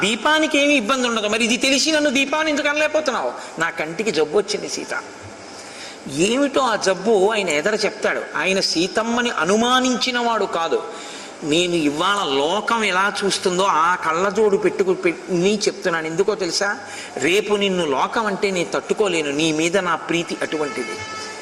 దీపానికి ఏమి ఇబ్బంది ఉండదు. మరి ఇది తెలిసి నన్ను దీపాన్ని ఎందుకు అనలేకపోతున్నావు? నా కంటికి జబ్బు వచ్చింది సీత. ఏమిటో ఆ జబ్బు ఆయన ఎదర చెప్తాడు. ఆయన సీతమ్మని అనుమానించిన వాడు కాదు. నేను ఇవాళ లోకం ఎలా చూస్తుందో ఆ కళ్ళజోడు పెట్టుకుని చెప్తున్నాను. ఎందుకో తెలుసా? రేపు నిన్ను లోకం అంటే నేను తట్టుకోలేను, నీ మీద నా ప్రీతి అటువంటిది.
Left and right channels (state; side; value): identical; both; correlation 1.00